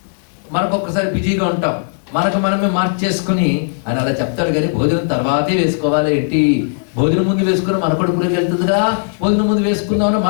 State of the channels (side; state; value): right; silent; digital silence